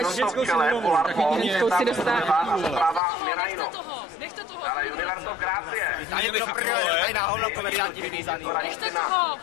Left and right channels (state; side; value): drops out; right; at 3.0 s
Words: v čele, Polar Pond, a zprava Mirajno. Dále Universo Gracie. Tady na hovno komedianti vyvízaný.